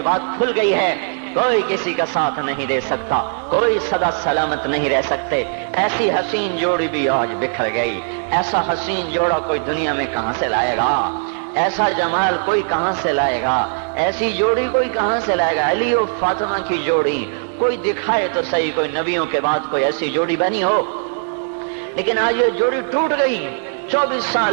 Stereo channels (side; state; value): left; silent; 66 dB below the other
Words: بات کھل گئی ہے، کوئی کسی کا ساتھ نہیں دے سکتا، کوئی سدا سلامت نہیں رہ سکتے۔ ایسی حسین جوڑی بھی آج بکھر گئی، ایسا حسین جوڑا کوئی دنیا میں کہاں سے لائے گا، ایسا جمال کوئی کہاں سے لائے گا، ایسی جوڑی کوئی کہاں سے لائے گا۔ علی و فاطمہ کی جوڑی کوئی دکھائے تو صحیح، کوئی نبیوں کے بعد کوئی ایسی جوڑی بنی ہو، لیکن آج یہ جوڑی ٹوٹ گئی۔ 24